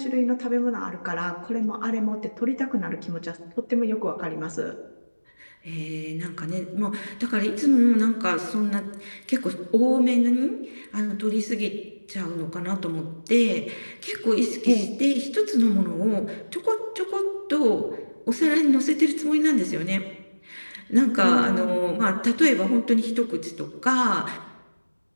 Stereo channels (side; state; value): both; inverted; correlation -1.00